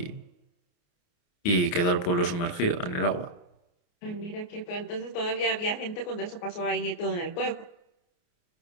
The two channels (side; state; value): right; late; 29 ms